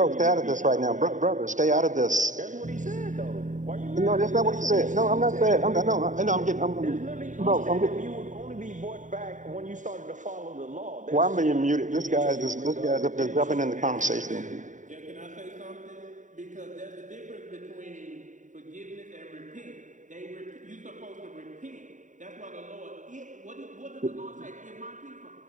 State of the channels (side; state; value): left; late; 0.36 ms